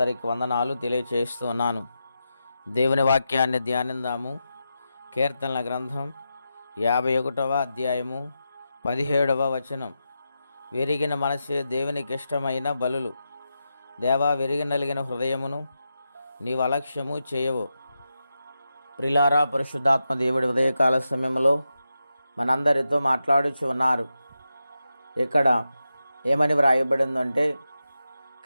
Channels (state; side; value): inverted; both; correlation -0.89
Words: వందనాలు తెలియచేస్తున్నాను. దేవుని వాక్యాన్ని ధ్యానిందాము. కీర్తనల గ్రంథం 51వ అధ్యాయము 17వ వచనం. విరిగిన మనసే దేవునికి ఇష్టమైన బలులు. దేవా, విరిగి నలిగిన హృదయమును నీవు అలక్ష్యము చేయవు. ప్రియులారా, పరిశుద్ధాత్మ దేవుడి ఉదయకాల సమయంలో మనందరితో మాట్లాడుచు ఉన్నారు. ఇక్కడ ఏమని వ్రాయబడిందంటే,